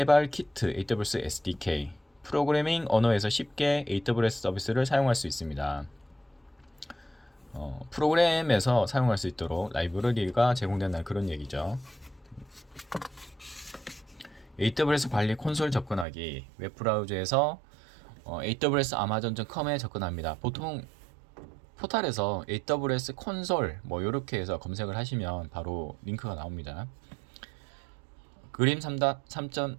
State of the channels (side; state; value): left; drops out; at 16.1 s